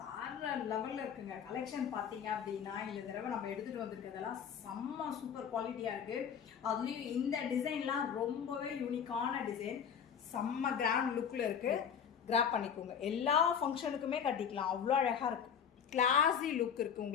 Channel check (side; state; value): right; quieter; 7.7 dB